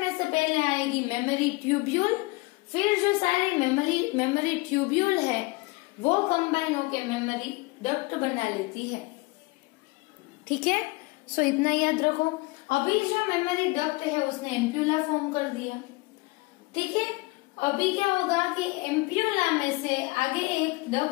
से पहले आएगी मेमोरी ट्यूब्यूल, फिर जो सारी मेमोरी ट्यूब्यूल है वो कंबाइन होके मेमोरी डक्ट बना लेती है। ठीक है, सो इतना याद रखो। अभी जो मेमोरी डक्ट है उसने एम्प्यूला फॉर्म कर दिया। ठीक है, अभी क्या होगा कि एम्प्यूला में से आगे एक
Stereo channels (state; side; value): quieter; right; 24.1 dB